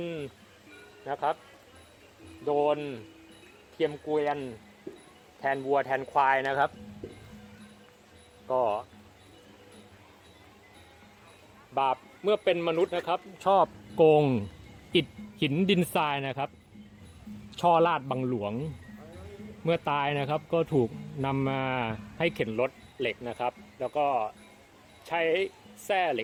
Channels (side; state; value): both; identical; correlation 1.00